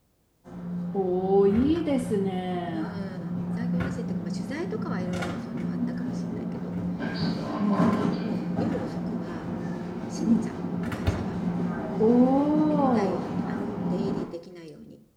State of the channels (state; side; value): identical; both; correlation 1.00